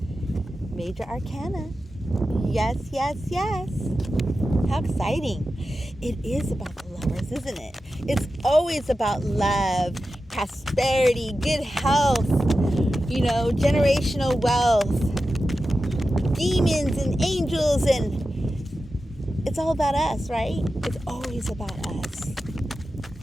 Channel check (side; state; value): both; normal; correlation 0.92